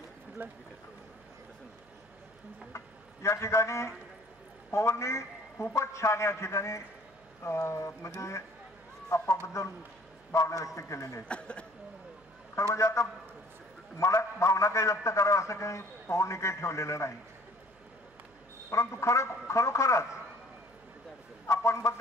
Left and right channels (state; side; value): noise; right; hum, 30 dB below the sound